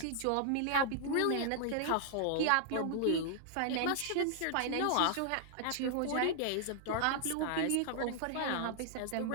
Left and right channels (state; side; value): different; both; correlation -0.01